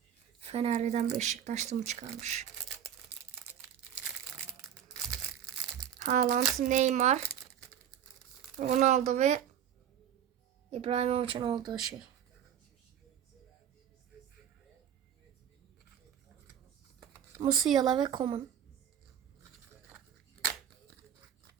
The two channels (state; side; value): quieter; left; 9.5 dB